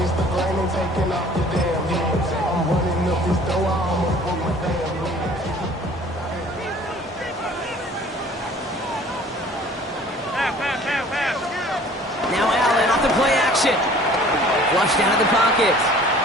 Now Allen off the play action. Flushed out of the pocket.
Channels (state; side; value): normal; both; correlation 0.51